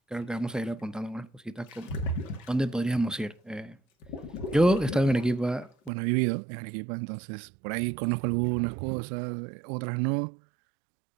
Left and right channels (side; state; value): left; drops out; at 5.9 s